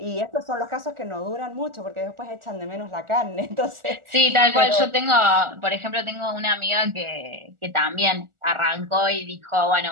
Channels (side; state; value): left; late; 1.4 ms